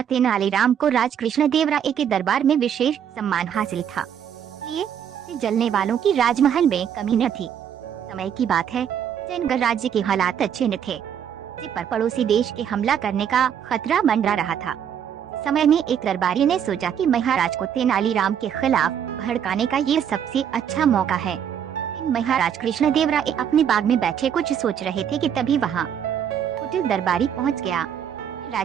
तेनालीराम को राज कृष्णदेवराय के दरबार में विशेष सम्मान हासिल था, इसलिए जलने वालों की राजमहल में कमी न थी। समय की बात है, विजयनगर राज्य के हालात अच्छे न थे, जिस पर पड़ोसी देश के हमला करने का खतरा मंडरा रहा था। समय में एक दरबारी ने सोचा कि महाराज को तेनालीराम के खिलाफ भड़काने का ये सबसे अच्छा मौका है। महाराज कृष्णदेवराय अपने बाग में बैठे कुछ सोच रहे थे कि तभी वहाँ कुटिल दरबारी पहुँच गया।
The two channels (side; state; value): left; quieter; 8.7 dB